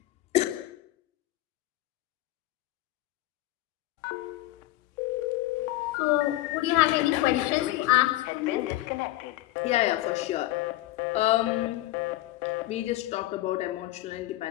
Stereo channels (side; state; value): right; quieter; 16.7 dB